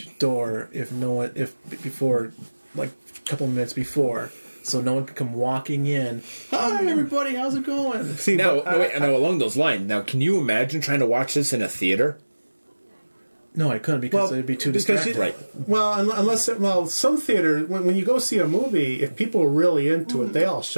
door before, like a couple minutes before, so no one could come walking in. Hi, everybody, how's it going? See, Now, but, wait, now, along those lines, now, can you imagine trying to watch this in a theater? No, I couldn't because it'd be too because distracting. Right. Well, some theater when you go see a movie, if people are really into it, they all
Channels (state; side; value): inverted; both; correlation -1.00